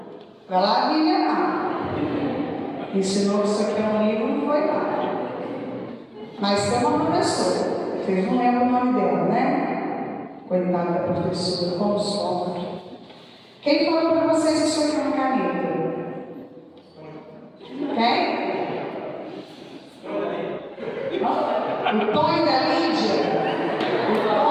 Vai lá, Viviana. Ensinou que isso aqui é um livro, não foi lá. Mas tem uma professora. Vocês não lembram o nome dela, né? Coitada da professora, como sofre. Quem falou para vocês que isso aqui é uma caneta? Quem? O Tonho da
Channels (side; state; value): both; identical; correlation 1.00